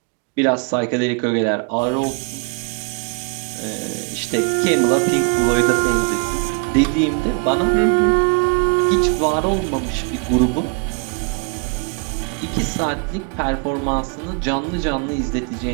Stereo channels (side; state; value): left; quieter; 34.8 dB